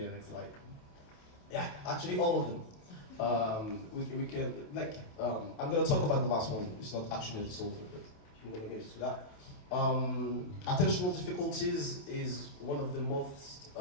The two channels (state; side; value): late; right; 28 ms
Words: next slide. Yeah, actually all of them. We can, like, I'm gonna talk about the last one. It's not actually a disorder, but I'm gonna get into that. Attentional difficulties is one of the most